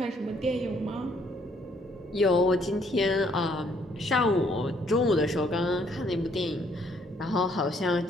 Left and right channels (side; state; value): both; normal; correlation 0.67